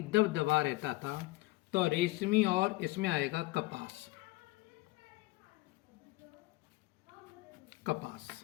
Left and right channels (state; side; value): quieter; right; 20.6 dB